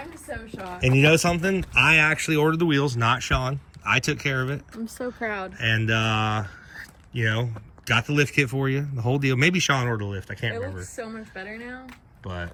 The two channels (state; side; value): identical; both; correlation 1.00